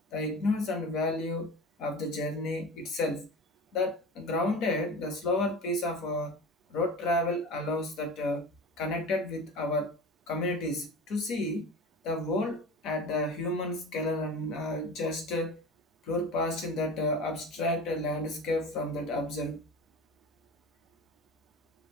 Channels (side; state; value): both; normal; correlation 0.33